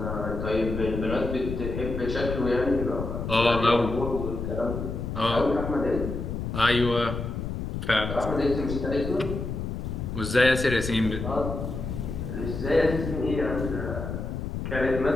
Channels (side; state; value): left; noise; rumble, 5 dB below the sound